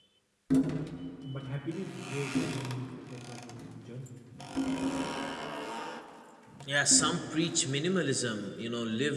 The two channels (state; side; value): identical; both; correlation 1.00